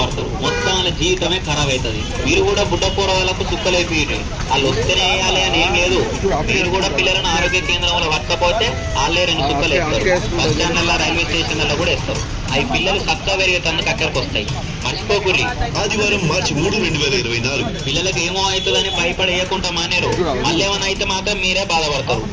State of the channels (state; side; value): identical; both; correlation 1.00